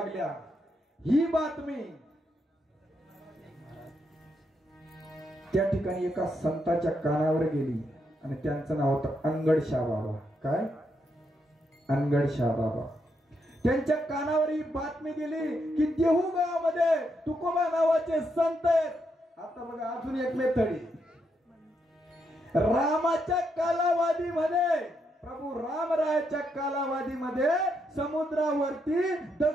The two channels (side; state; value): both; normal; correlation 0.80